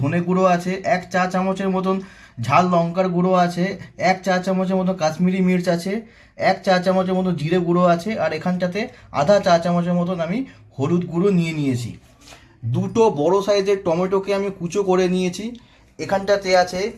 গুঁড়ো আছে, 1 চা চামচের মতন ঝাল লঙ্কার গুঁড়ো আছে, 1 চা চামচের মতো কাশ্মীরি মির্চ আছে, 1 চা চামচের মতো জিরে গুঁড়ো আছে, আর এখানটাতে আধা চা চামচের মতন আমি হলুদ গুঁড়ো নিয়েছি। দুটো বড় সাইজের টমেটোকে আমি কুচো করে নিয়েছি। এখানটাতে আছে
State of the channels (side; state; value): both; identical; correlation 1.00